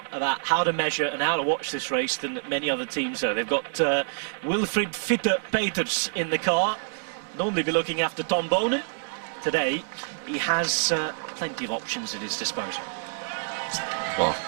about how to measure and how to watch this race than many other teams do. They've got Wilfried Fitte Peters in the car. Normally be looking after Tom Bonen. Today, he has plenty of options at his disposal. Well,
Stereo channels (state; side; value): silent; left; 60 dB below the other